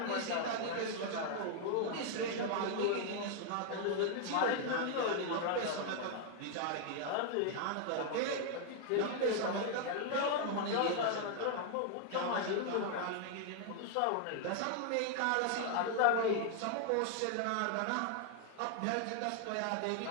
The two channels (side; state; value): both; different; correlation 0.00